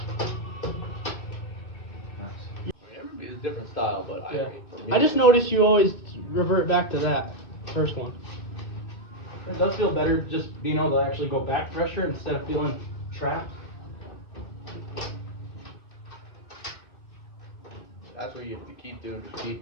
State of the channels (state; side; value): late; right; 2.5 ms